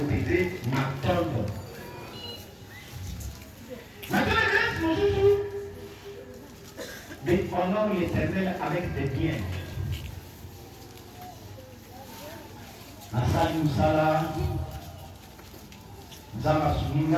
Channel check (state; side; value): identical; both; correlation 1.00